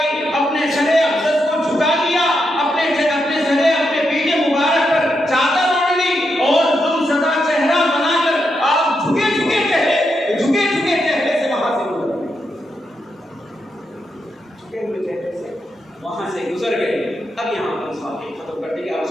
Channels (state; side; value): normal; both; correlation 0.83